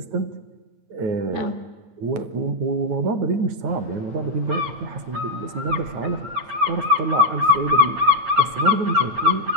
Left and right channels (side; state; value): left; late; 9.3 ms